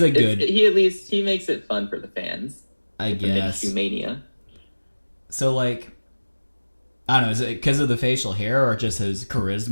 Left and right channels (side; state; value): both; inverted; correlation -1.00